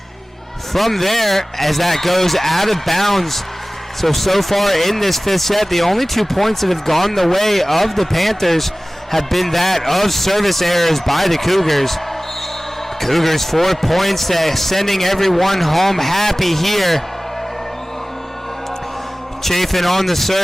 from there as that goes out of bounds. So far in this 5th set, the only 2 points that have gone the way of the Panthers have been that of service errors by the Cougars. Cougars 4 points, sending everyone home happy here. Chafin on the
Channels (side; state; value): both; normal; correlation 0.98